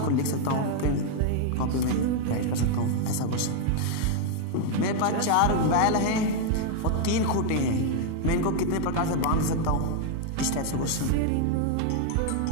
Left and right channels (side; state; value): both; different; correlation 0.00